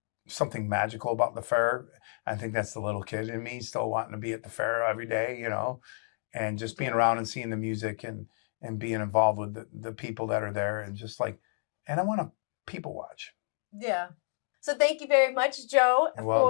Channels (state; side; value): silent; right; digital silence